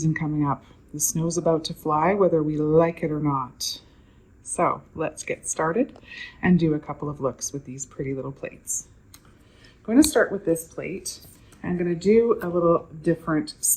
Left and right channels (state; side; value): identical; both; correlation 1.00